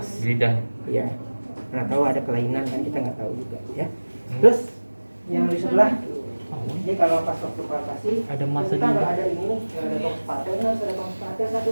Di lidah. Iya. Nggak tahu ada kelainan kan kita nggak tahu juga ya. Terus yang di sebelah ini kalau pas waktu palpasi Ada masa kita nggak juga. ada ini nih, nggak ada tong spatel, harus ada tong satu.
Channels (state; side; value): inverted; both; correlation -1.00